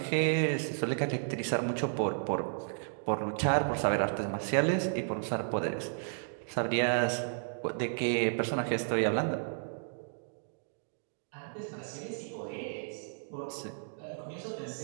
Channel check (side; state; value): left; silent; digital silence